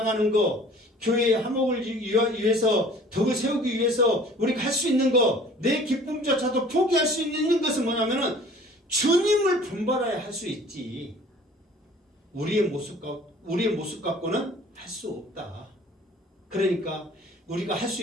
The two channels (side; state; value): both; normal; correlation 0.49